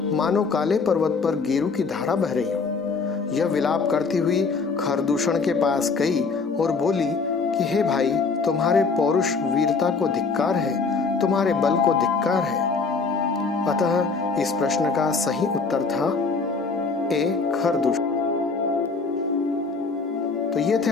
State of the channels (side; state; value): right; quieter; 4.6 dB